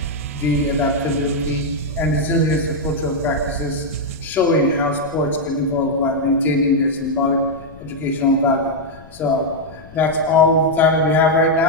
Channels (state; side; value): noise; left; rumble, 21 dB below the sound